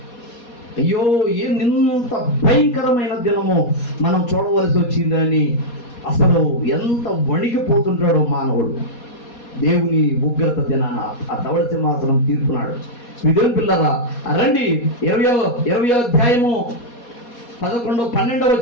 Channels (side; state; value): right; late; 4.2 ms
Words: అయ్యో, ఇంత భయంకరమైన దినము మనం చూడవలసి వచ్చిందని అసలు ఎంత వణికిపోతుంటాడో మానవుడు. దేవుని ఉగ్రత దినాన ఆ ధవళ సింహాసనం తీర్పునాడు. విధుల పిల్లరా రండి, 20వ అధ్యాయము 11-12